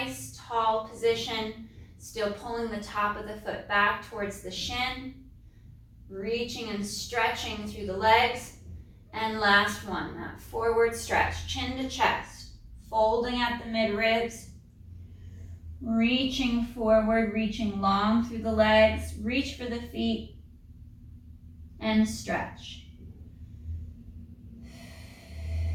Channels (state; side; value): identical; both; correlation 1.00